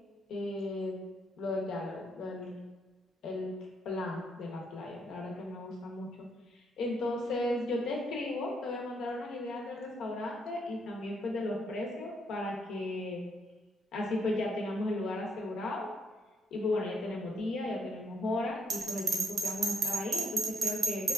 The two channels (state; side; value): normal; both; correlation 0.72